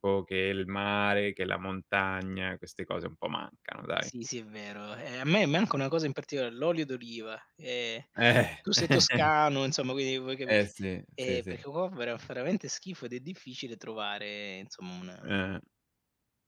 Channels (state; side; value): identical; both; correlation 1.00